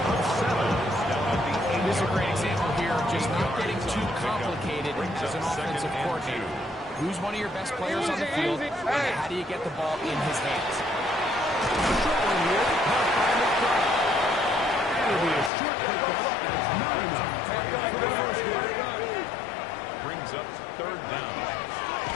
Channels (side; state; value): right; drops out; at 15.5 s